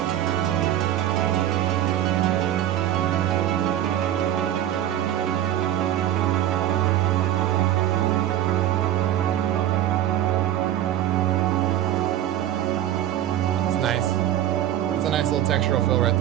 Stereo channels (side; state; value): left; quieter; 12.0 dB